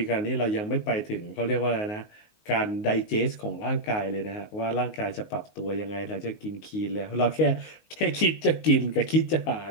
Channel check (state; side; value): late; right; 19 ms